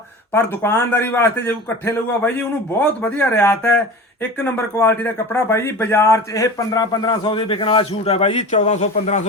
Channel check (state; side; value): normal; both; correlation 0.34